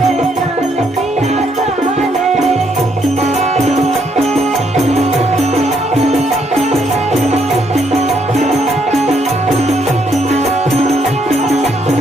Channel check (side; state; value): both; normal; correlation 0.73